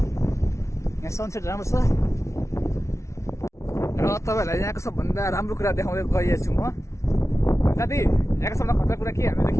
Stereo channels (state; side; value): late; right; 0.14 ms